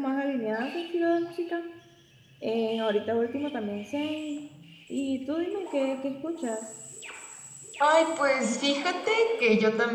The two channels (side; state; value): both; identical; correlation 1.00